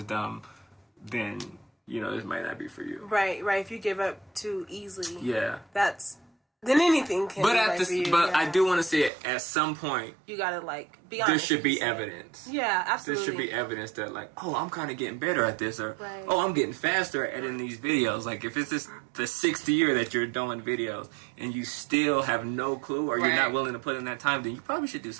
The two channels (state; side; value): drops out; left; at 9.1 s